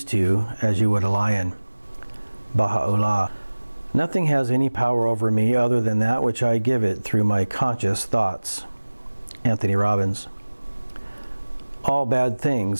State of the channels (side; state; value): both; inverted; correlation -1.00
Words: two as you would a lion. Baha'u'llah. Nothing has any power over me other than that which I give it through my conscious thoughts. Anthony Robbins. All bad